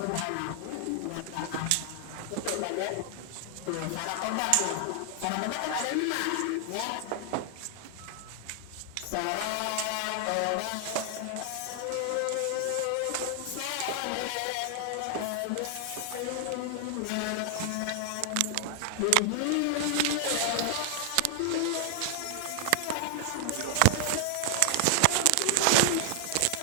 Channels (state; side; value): different; both; correlation 0.00